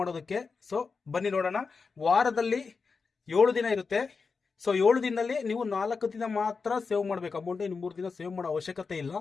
ಸೊ ಬನ್ನಿ ನೋಡೋಣ. ವಾರದಲ್ಲಿ 7 ದಿನ ಇರುತ್ತೆ. ಸೊ 7 ದಿನದಲ್ಲಿ ನೀವು 4 ದಿನ ಮಾತ್ರ ಸೇವ್ ಮಾಡಬೇಕು ಅಮೌಂಟ್. ಇನ್ನು 3 ದಿನ ಸೇವ್ ಮಾಡೋ ಅವಶ್ಯಕತೆ ಇಲ್ಲ.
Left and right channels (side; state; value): right; quieter; 4.9 dB